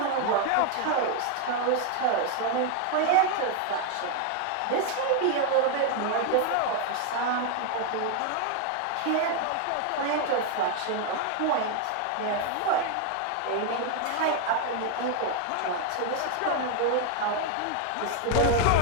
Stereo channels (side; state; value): both; different; correlation 0.00